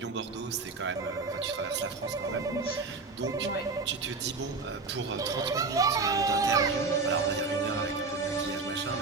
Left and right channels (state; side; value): quieter; left; 4.1 dB